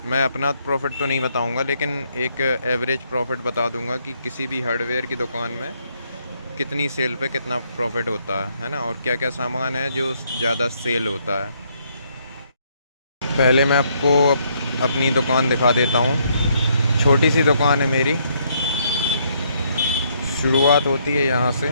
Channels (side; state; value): both; inverted; correlation -0.71